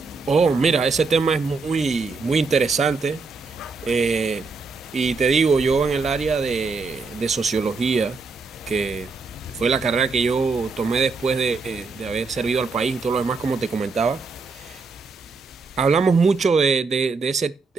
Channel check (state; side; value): quieter; left; 4.3 dB